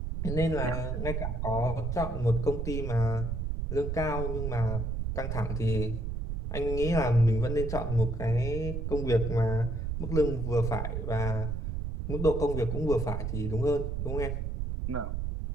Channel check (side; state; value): right; noise; rumble, 2 dB below the sound